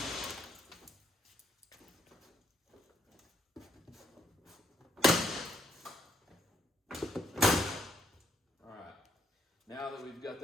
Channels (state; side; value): normal; both; correlation 0.73